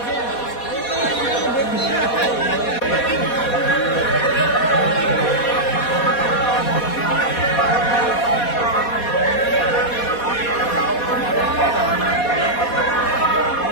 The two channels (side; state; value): right; late; 4.2 ms